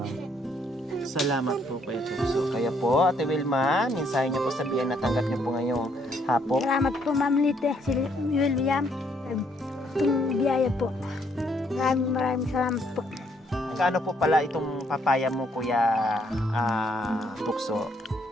Salamat po Kuya Tukso. Kaya po, Ate Wilma, mensahe niyo po sa biyan na tanggap niyo po ngayong hapon. Salamat po ma'am Lite, si William. Itong biyaya po. Maraming salamat po. Kaano po pala itong papaya mo, Kuya Tukso?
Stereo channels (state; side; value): normal; both; correlation 0.70